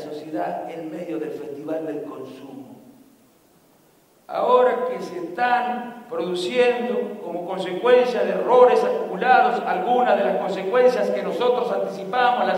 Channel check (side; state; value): both; identical; correlation 1.00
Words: en medio del festival del consumo. Ahora que se están produciendo como consecuencia de errores acumulados algunas de las consecuencias que nosotros anticipamos, la